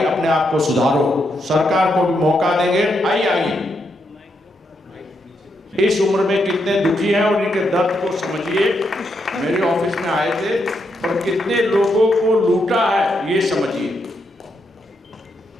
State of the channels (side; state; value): both; normal; correlation 0.81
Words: अपने आप को सुधारो, सरकार को भी मौका देंगे। आइए इस उम्र में कितने दुखी हैं और इनके दर्द को समझिए। मेरे ऑफिस में आए थे और कितने लोगों को लूटा है ये समझिए।